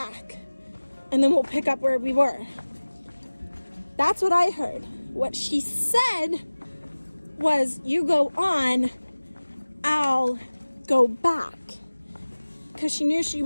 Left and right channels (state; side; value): inverted; both; correlation -1.00